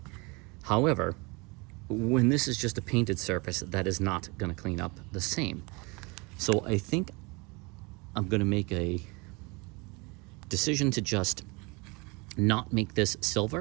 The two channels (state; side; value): quieter; left; 27.6 dB